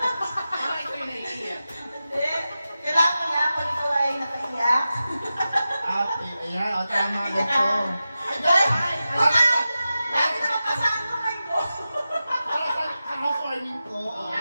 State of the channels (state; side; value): inverted; both; correlation -0.93